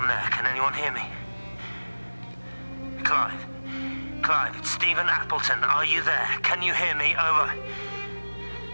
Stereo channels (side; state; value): both; inverted; correlation -1.00